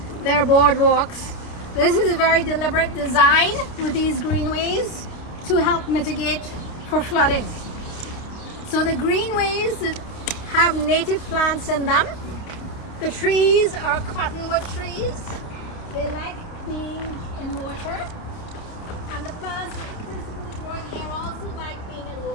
there are boardwalks. This is a very deliberate design with these greenways to help mitigate for flooding. So the greenways have native plants in them. The trees are cottonwood trees. They like being in water, and the plants here also like being in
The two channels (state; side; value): late; right; 29 ms